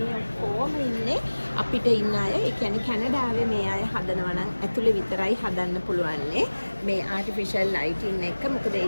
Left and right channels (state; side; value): inverted; both; correlation -1.00